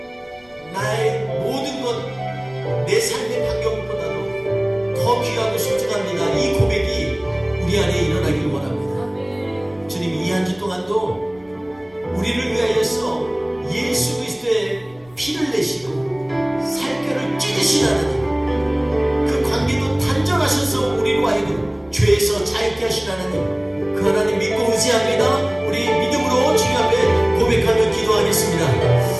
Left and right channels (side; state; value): left; noise; rumble, 28 dB below the sound